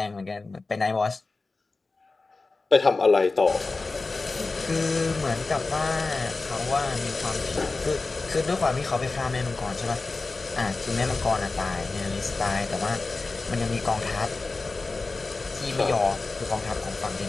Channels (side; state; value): right; quieter; 3.7 dB